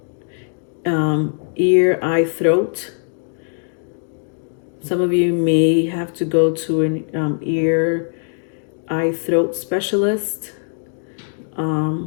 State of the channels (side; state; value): right; silent; digital silence